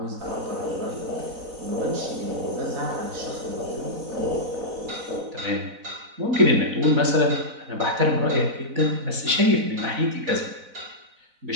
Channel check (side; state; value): left; late; 4.0 ms